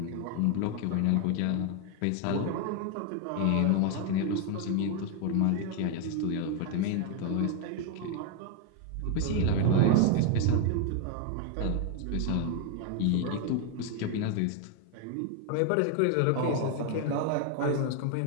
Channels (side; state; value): both; different; correlation 0.01